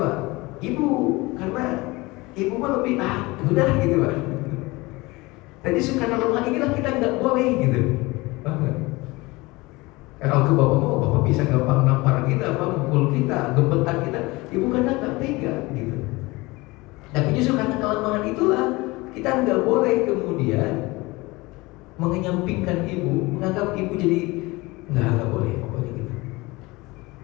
Ibu, karena ibu mah lebih udah gitu Pak. Tadi karena lemah inilah kita nggak boleh gitu. Paham? Kalau ke bapak mau, bapak bisa gampang nampar kita, mukul kita, gemetar kita. Ibu karena nggak tega gitu. Tapi justru karena kelemahan itulah kita nggak boleh kemudian mengenyampingkan ibu, menganggap ibu jadi nggak boleh pokoknya gitu.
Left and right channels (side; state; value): right; quieter; 22.5 dB